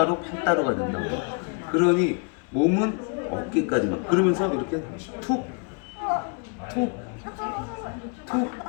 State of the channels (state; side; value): quieter; right; 37.2 dB